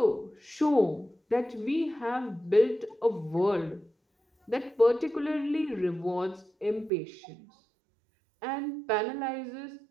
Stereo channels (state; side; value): drops out; left; at 6.9 s